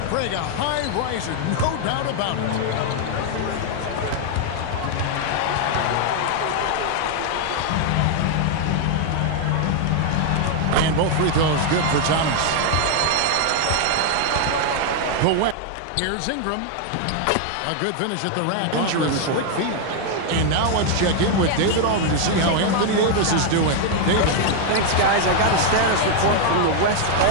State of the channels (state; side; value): different; both; correlation 0.00